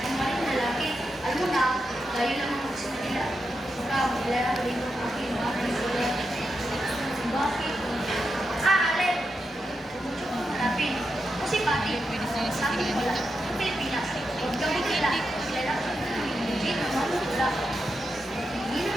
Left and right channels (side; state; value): both; normal; correlation 0.86